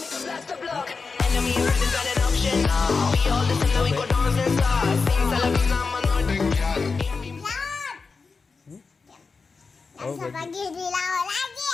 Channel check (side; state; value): right; quieter; 4.6 dB